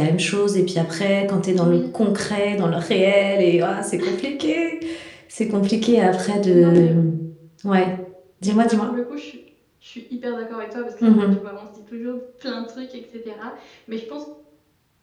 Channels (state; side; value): identical; both; correlation 1.00